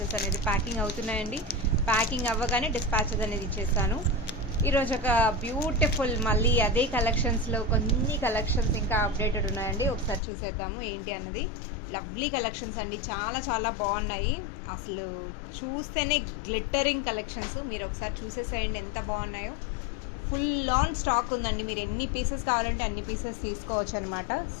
అనేది ప్యాకింగ్ అవుతున్నాయండి. ప్యాకింగ్ అవ్వగానే డిస్పాచెస్ అనేది ఇచ్చేస్తాను. ఈరోజు ఒక బ్యూటిఫుల్ మళ్ళీ అదే కలెక్షన్స్లో కొన్ని కలెక్షన్స్ ఇంకా అప్డేటెడ్ ఉన్నాయండి. ఒకసారి చూసేద్దాము ఏంటి అన్నది. లవ్లీ కలెక్షన్స్ అండి, చాలా చాలా బాగున్నాయి. అసలు చూస్తేనే గ్లిట్టరింగ్ కలెక్షన్స్. మీరు ఒకసారి చూసేసేయండి ఎంత బాగున్నాయో. ఫుల్ ఆన్ స్టాక్ ఉందండి. మీరు ఎన్ని పీసెస్ కావాలంటే అన్ని పీసెస్ తీసుకోవచ్చు అనమాట.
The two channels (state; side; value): drops out; right; at 10.2 s